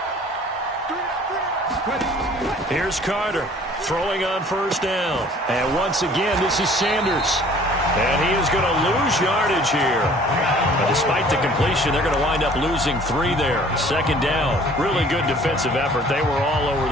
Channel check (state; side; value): normal; both; correlation 0.52